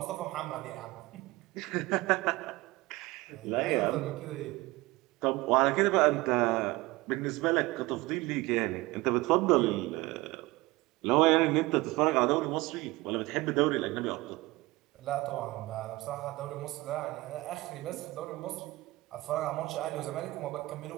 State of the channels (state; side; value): quieter; left; 20.7 dB